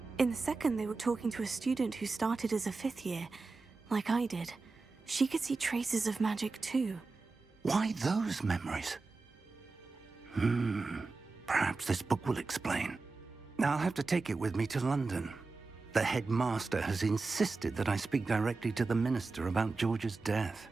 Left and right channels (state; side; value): quieter; left; 3.9 dB